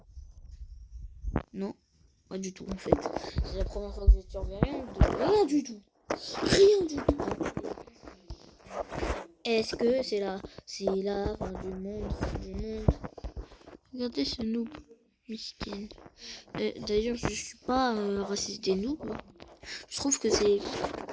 Non, pas du tout en fait. C'est la première fois que je surveille rien du tout. Rien du tout. Est-ce que c'est la fin du monde, Regardez ce noob, miskin. D'ailleurs, je suis pas raciste des noobs. Je trouve que c'est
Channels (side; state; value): both; identical; correlation 1.00